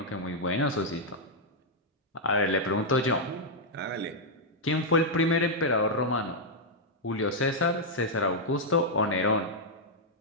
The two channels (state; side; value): normal; both; correlation -0.04